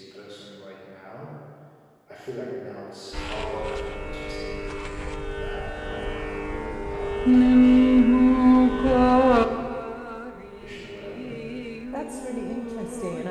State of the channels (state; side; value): identical; both; correlation 1.00